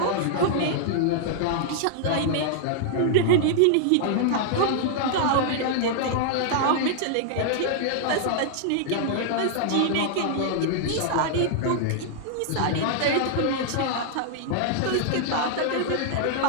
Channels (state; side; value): different; both; correlation -0.01